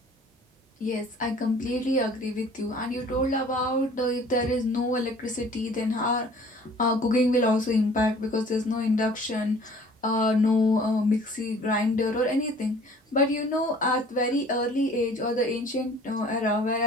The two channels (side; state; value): both; normal; correlation 0.51